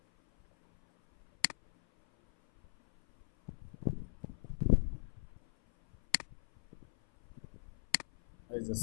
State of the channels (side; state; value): right; silent; 52 dB below the other